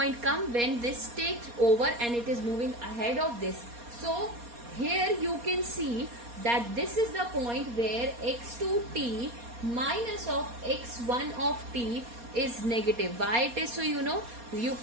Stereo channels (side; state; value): left; late; 4.2 ms